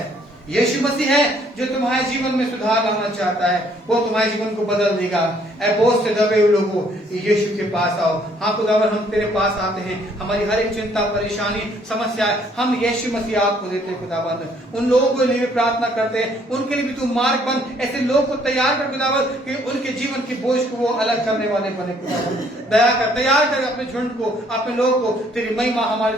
यीशु मसीह है जो तुम्हारे जीवन में सुधार लाना चाहता है। वो तुम्हारे जीवन को बदल देगा। ऐ बोझ से दबे हुए लोगों, यीशु के पास आओ। हाँ खुदावन, हम तेरे पास आते हैं। हमारी हर एक चिंता, परेशानी, समस्या हम यीशु मसीह आपको देते हैं खुदावन। उन लोगों के लिए भी प्रार्थना करते हैं, उनके लिए भी तू मार्ग बन। ऐसे लोग को तैयार कर खुदावन कि उनके जीवन की बोझ को वो अलग करने वाले बने खुदावन। दया कर, तैयार कर अपने झुंड को, अपने लोग को। तेरी महिमा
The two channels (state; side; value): normal; both; correlation 0.64